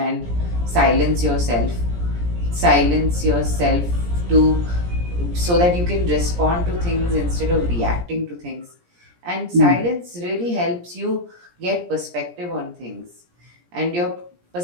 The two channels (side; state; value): left; late; 17 ms